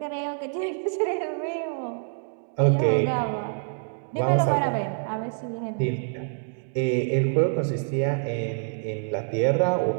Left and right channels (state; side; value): silent; left; digital silence